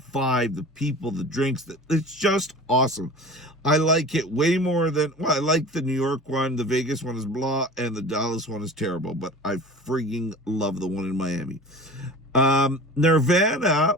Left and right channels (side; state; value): both; normal; correlation 0.38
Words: the people, the drinks. It's just awesome. I like it way more than, I like the New York one. The Vegas one is blah, and the Dallas one is terrible. But I freaking love the one in Miami. Nirvana